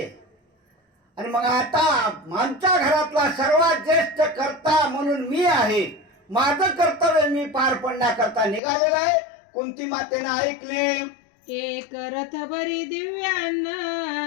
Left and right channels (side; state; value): right; drops out; at 8.6 s